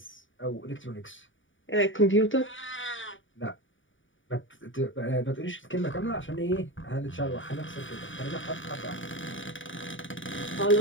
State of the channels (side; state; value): right; late; 0.57 ms